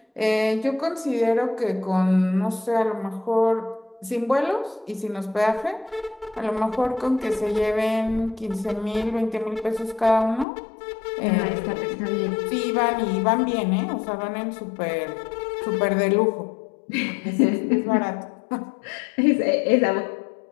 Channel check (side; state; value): right; drops out; at 10.5 s